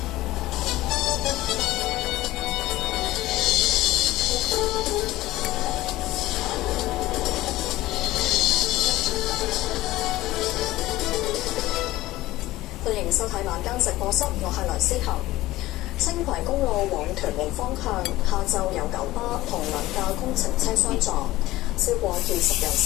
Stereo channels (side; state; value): right; quieter; 17.1 dB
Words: 歡迎收睇晚間直播室，我係梁思涵。青葵公路往屯門方向，下晝有九巴同兩架工程車相撞，超過20人